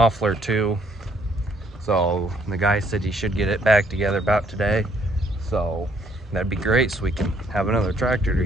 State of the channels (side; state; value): both; normal; correlation 0.67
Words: too. So the guy said he should get it back together about today. So that'd be great, so we can have another tractor to